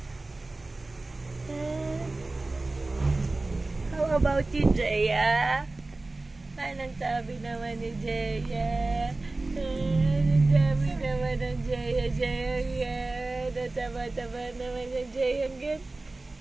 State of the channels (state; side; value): quieter; left; 3.1 dB